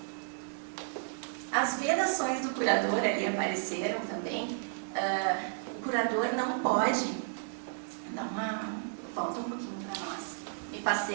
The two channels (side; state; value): left; silent; digital silence